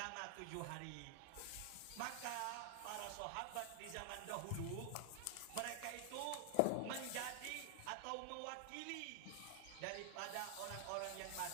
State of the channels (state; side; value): different; both; correlation 0.00